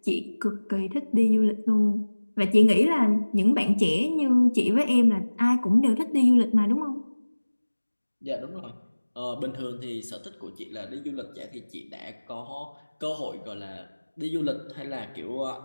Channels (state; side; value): inverted; both; correlation -1.00